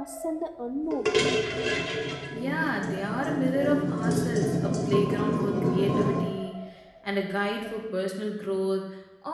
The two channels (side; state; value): both; identical; correlation 1.00